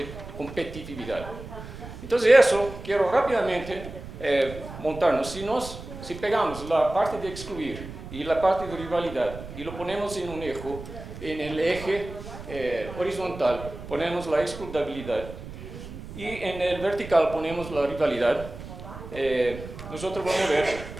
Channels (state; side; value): noise; right; rumble, 12 dB below the sound